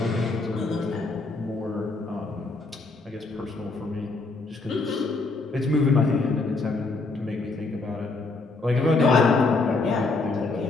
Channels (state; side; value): quieter; right; 3.6 dB